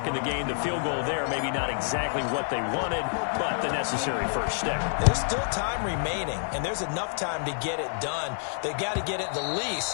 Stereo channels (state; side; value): silent; right; 59 dB below the other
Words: in the game. The field goal there, maybe not exactly what they wanted, but the necessary first step. There's still time remaining, and there's enough time to get it done. They got to get at the